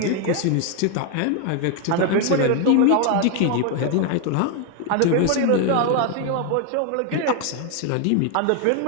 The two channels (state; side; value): different; both; correlation 0.01